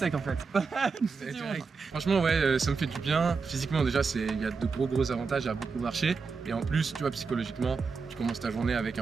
en fait. Franchement, ouais, ça me fait du bien. Physiquement, déjà, il y a de gros avantages à beaucoup marcher. Et en plus, tu vois, psychologiquement, tu commences ta journée avec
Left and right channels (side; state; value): left; quieter; 4.9 dB